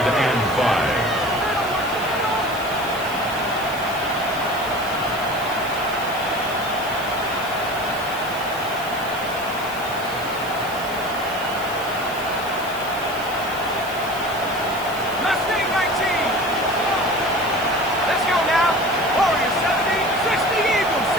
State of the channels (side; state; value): right; noise; hiss, 15 dB below the sound